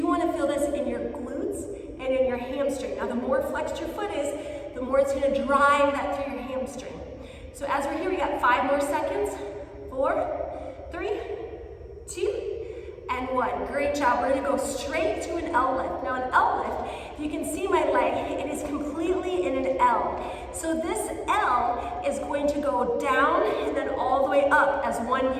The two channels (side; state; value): both; identical; correlation 1.00